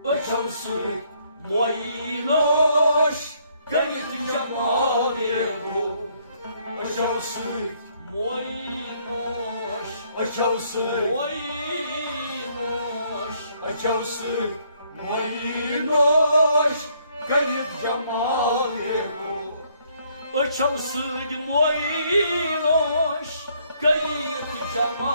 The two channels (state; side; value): inverted; both; correlation -0.68